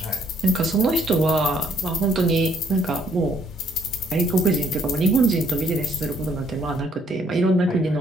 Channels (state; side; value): normal; both; correlation 0.67